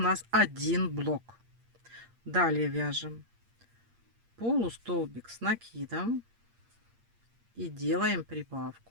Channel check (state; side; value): late; left; 8.6 ms